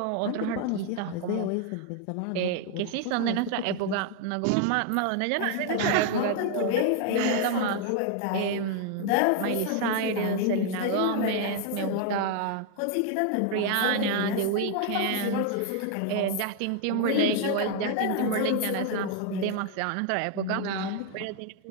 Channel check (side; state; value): both; different; correlation 0.00